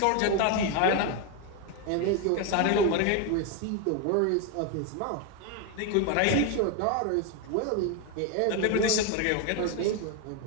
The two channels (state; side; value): different; both; correlation 0.01